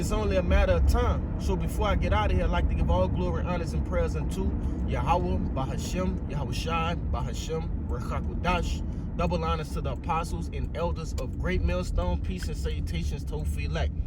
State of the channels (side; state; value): both; identical; correlation 1.00